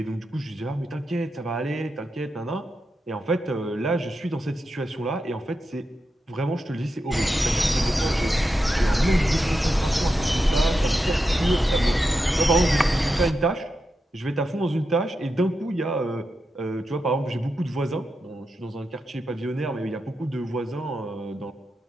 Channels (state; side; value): normal; both; correlation 0.88